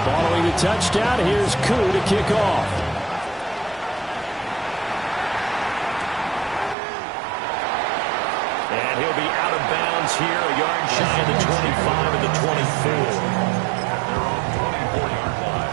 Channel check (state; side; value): drops out; left; at 6.8 s